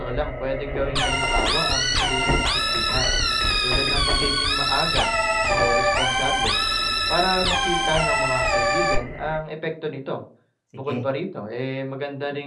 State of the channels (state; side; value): identical; both; correlation 1.00